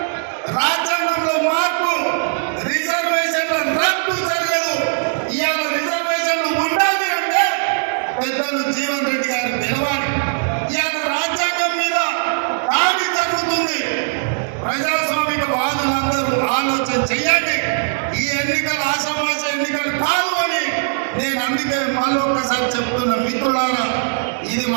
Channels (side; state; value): left; silent; digital silence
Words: రాజ్యాంగంలో మార్పు, రిజర్వేషన్ల రద్దు జరగదు. ఇవాళ రిజర్వేషన్లు ఉండాలి అంటే పెద్దలు జీవన్ రెడ్డి గారు నిలవాలి. ఇవాళ రాజ్యాంగం మీద దాడి జరుగుతుంది. ప్రజాస్వామిక వాదులందరూ ఆలోచన చెయ్యండి. ఈ ఎన్నికలు ఆషామాష ఎన్నికలు కాదు అని నేను అందుకే మళ్ళొక్కసారి చెప్తున్న మిత్రులారా, ఇది